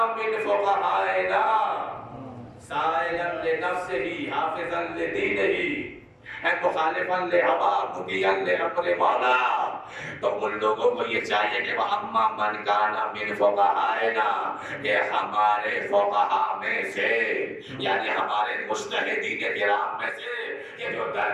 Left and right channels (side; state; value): both; identical; correlation 1.00